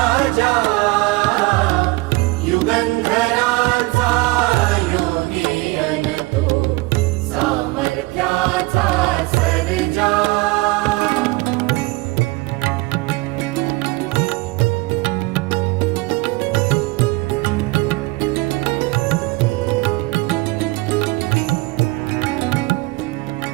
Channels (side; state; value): left; quieter; 22.6 dB